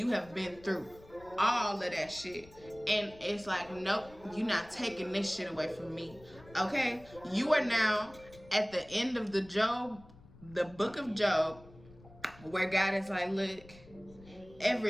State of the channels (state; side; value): noise; left; rumble, 22 dB below the sound